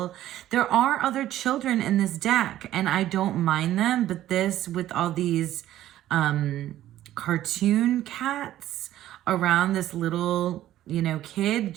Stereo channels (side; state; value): left; quieter; 13.3 dB